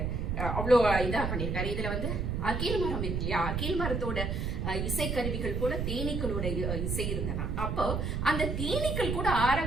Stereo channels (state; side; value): noise; right; rumble, 1 dB below the sound